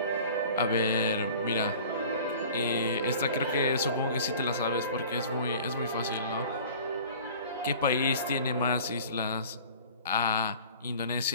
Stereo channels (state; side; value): inverted; both; correlation -0.45